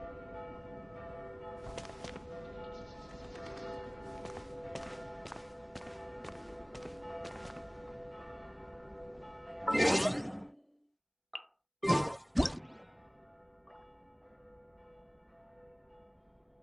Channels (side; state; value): both; identical; correlation 1.00